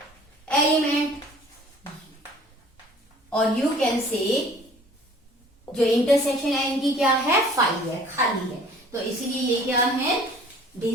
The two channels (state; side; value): normal; both; correlation 0.51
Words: एलिमेंट। और यू कैन से जो इंटरसेक्शन है इनकी क्या है, 5 है, खाली है, तो इसीलिए ये क्या है,